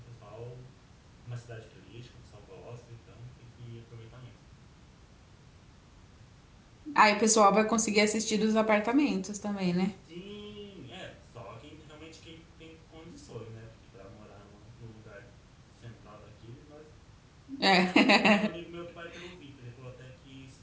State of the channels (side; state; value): both; identical; correlation 1.00